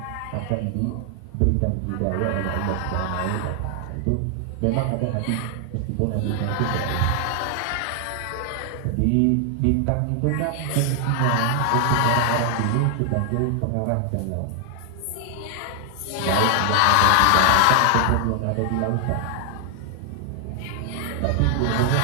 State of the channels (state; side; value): different; both; correlation 0.00